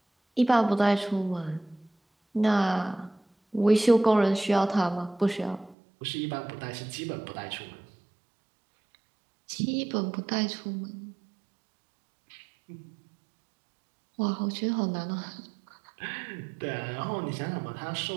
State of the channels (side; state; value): left; drops out; at 5.8 s